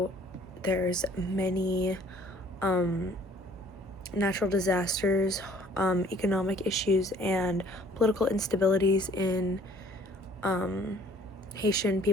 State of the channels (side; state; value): both; normal; correlation 0.56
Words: there's many natural disasters, economic issues, and political instabilities in Haitian